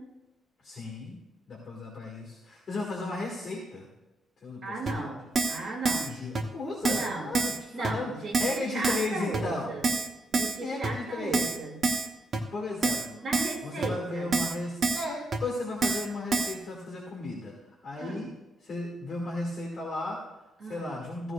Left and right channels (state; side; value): normal; both; correlation 0.80